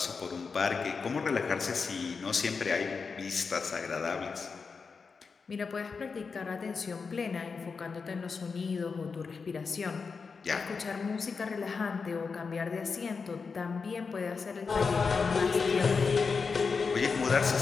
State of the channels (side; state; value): right; quieter; 5.0 dB